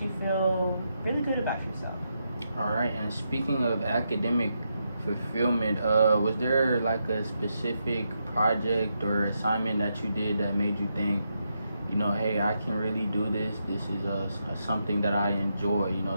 you feel really good about yourself. All right. And speaking of academic fulfillment, was there like a specific project or assignment that you did that made you think, hey, I can really do this. This is something that I enjoy,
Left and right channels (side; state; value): both; inverted; correlation -0.83